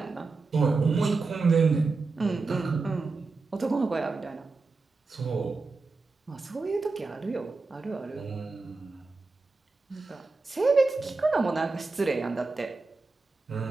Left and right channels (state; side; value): quieter; left; 3.8 dB